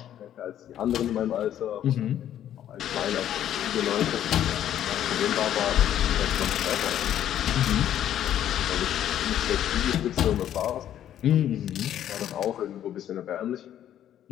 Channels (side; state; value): right; quieter; 11.0 dB